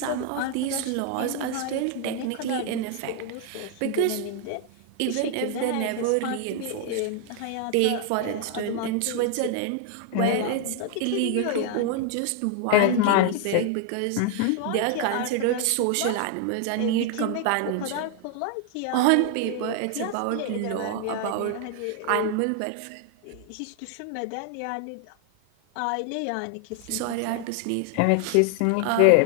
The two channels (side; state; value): both; different; correlation 0.00